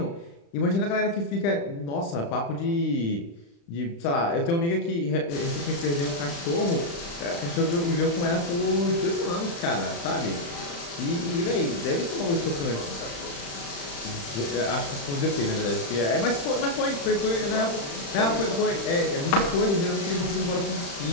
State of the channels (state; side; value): late; right; 35 ms